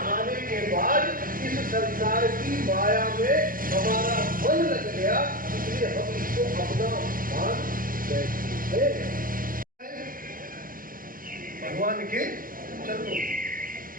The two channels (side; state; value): left; late; 0.41 ms